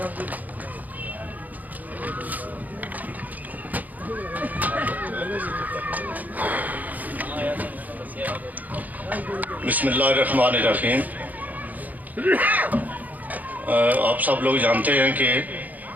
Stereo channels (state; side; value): late; left; 0.080 ms